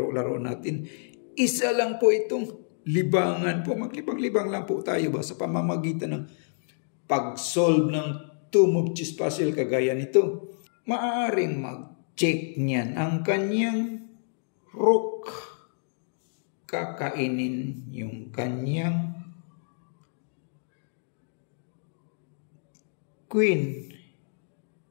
natin. Isa lang po itong libangan po. Maglibang-libang lang po tayo ba sa pamamagitan ng pag-solve ng two-move chess puzzle kagaya nito. Maaaring mag-check niyan ang kanyang rook. Kakainin yung kanyang queen.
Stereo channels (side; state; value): right; silent; digital silence